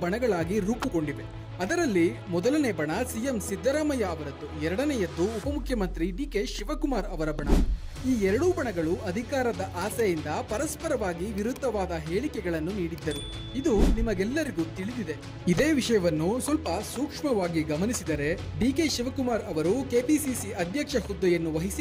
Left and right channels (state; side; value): identical; both; correlation 1.00